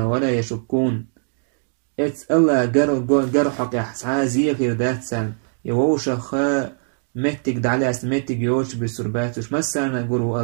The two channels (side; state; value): left; silent; digital silence